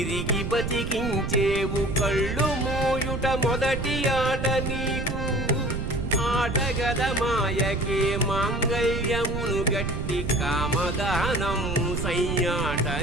బతికించేవు కళ్ళు మోయుట మొదటి ఆట నీకు ఆటగద మాయకే మాంగళ్యమును గట్టి కామదానం సయ్యాట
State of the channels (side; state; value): right; noise; rumble, 4 dB below the sound